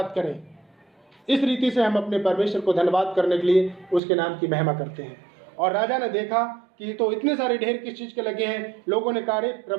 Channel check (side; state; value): left; drops out; at 4.0 s